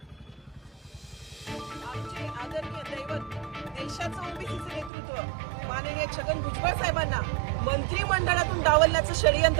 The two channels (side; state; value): left; drops out; at 4.9 s